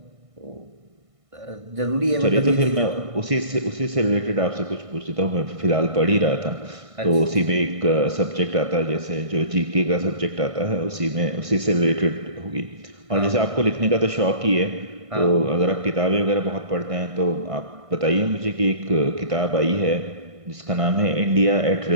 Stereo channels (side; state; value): left; late; 1.6 ms